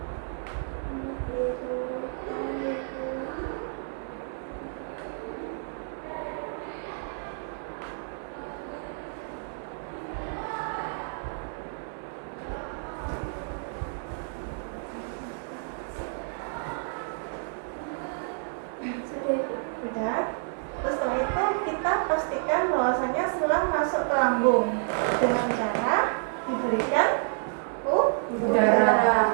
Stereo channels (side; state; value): left; silent; 58 dB below the other